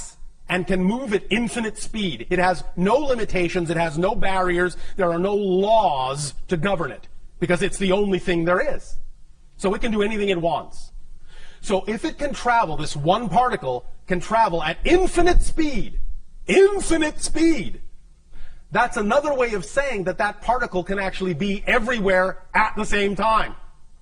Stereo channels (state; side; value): identical; both; correlation 1.00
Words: and can move at infinite speed. It has no limitations, it has no barriers, there are no laws to govern it, because it's the only thing there is. So it can do anything it wants. So if it can travel, this one particle can travel at infinite speed, that's another way of saying that that particle can actually be everywhere at the same time.